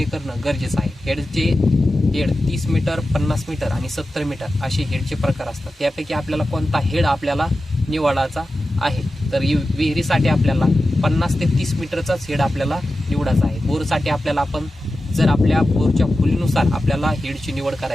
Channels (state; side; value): normal; both; correlation 0.93